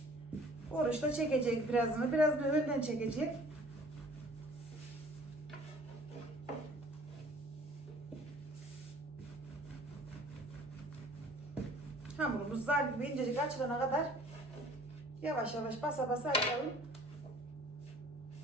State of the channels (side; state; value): both; normal; correlation 0.52